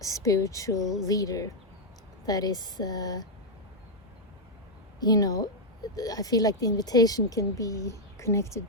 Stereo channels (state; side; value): normal; both; correlation -0.02